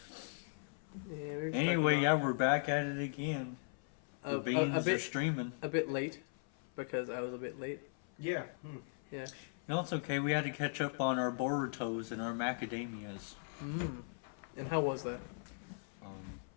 Yeah, Anyway, yeah, we're back at it again. The beans are streaming. A bit late, because I was a bit late. Yeah. Yeah. No, it's okay. We had to catch up on our Borutos and our macadamias. And how was that?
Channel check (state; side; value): silent; right; 52 dB below the other